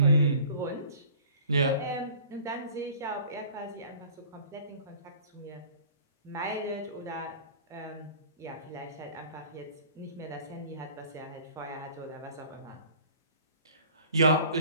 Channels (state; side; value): inverted; both; correlation -0.47